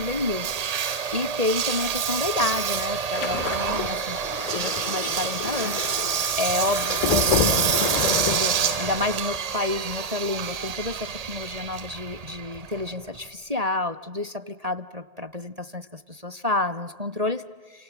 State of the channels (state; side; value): late; left; 1.8 ms